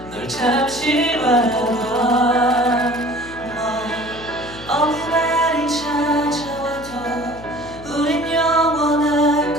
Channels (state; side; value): noise; left; hum, 17 dB below the sound